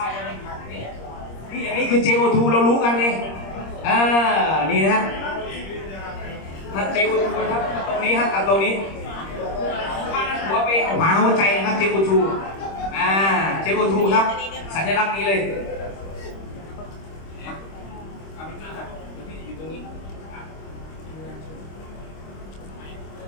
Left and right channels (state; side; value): late; right; 26 ms